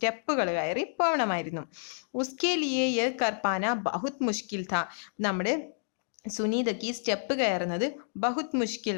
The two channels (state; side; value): silent; right; digital silence